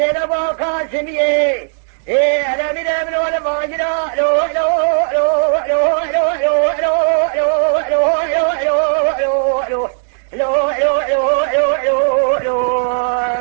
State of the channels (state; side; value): silent; left; digital silence